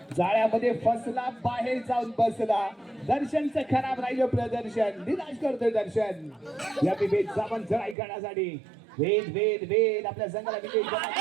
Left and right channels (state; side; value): drops out; left; at 8.0 s